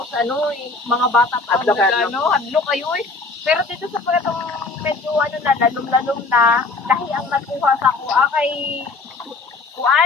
mga bata pa ang hadlo kayo Pero dito sa pagkatong medyo na, lalom-lalom na, dahil ang nakuha sa ako, kay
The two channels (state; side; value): quieter; right; 3.7 dB